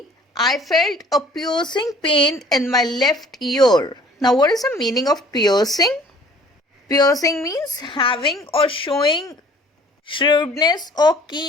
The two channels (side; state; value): both; normal; correlation 0.53